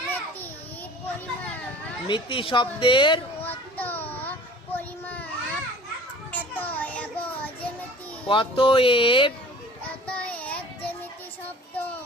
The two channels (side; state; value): both; normal; correlation 0.45